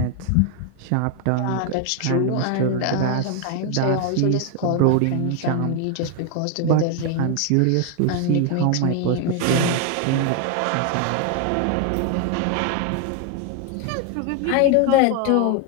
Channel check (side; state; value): both; different; correlation 0.01